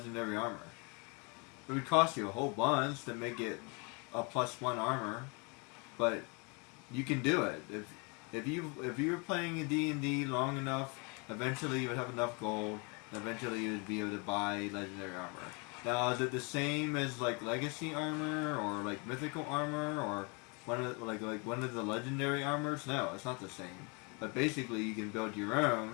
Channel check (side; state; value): right; quieter; 32.0 dB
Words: armor. It would cost you a whole bunch to make it a +1 armor, but you can do it. If you were playing a D&D long enough, eventually you would have enough gold, and eventually you would be able to buy legendary armor. Now, is it the same as like legacy armor or like mythical armor or one of the legendary armors? No, it's not the same. But basically, you can build your